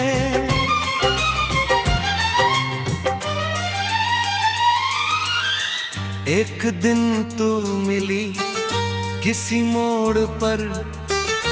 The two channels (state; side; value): identical; both; correlation 1.00